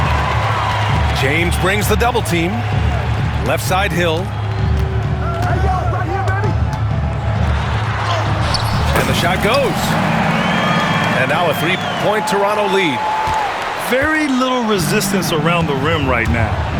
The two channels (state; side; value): identical; both; correlation 1.00